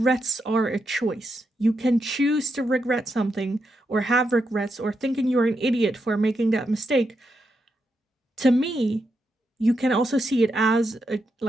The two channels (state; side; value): normal; both; correlation 0.83